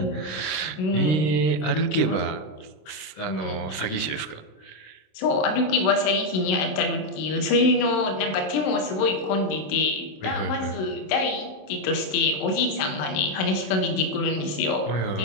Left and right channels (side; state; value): right; late; 26 ms